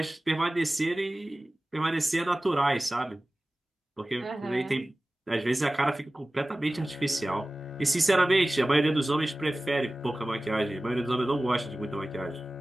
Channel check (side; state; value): both; normal; correlation 0.97